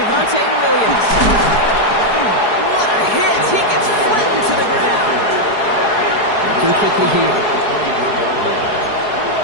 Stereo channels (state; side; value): late; right; 4.7 ms